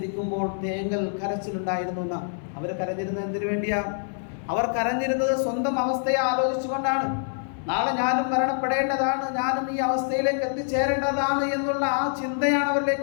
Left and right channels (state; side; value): silent; right; 61 dB below the other